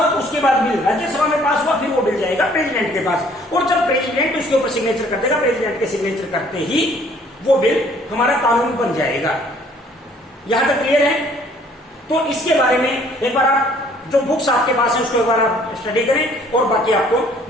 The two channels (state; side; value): normal; both; correlation 0.59